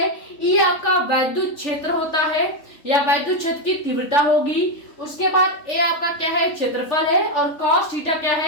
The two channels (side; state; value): right; late; 3.4 ms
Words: ई आपका वैद्युत क्षेत्र होता है या वैद्युत क्षेत्र की तीव्रता होगी। उसके बाद ए आपका क्या है, क्षेत्रफल है, और कॉस थीटा क्या